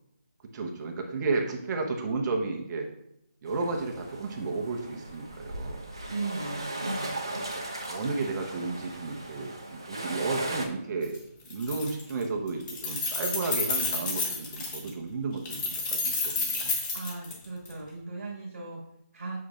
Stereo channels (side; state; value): both; inverted; correlation -0.51